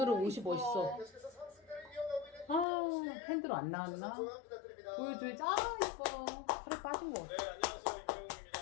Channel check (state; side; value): drops out; right; at 2.7 s